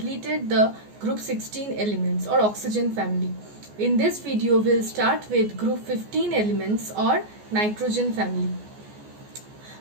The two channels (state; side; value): late; left; 14 ms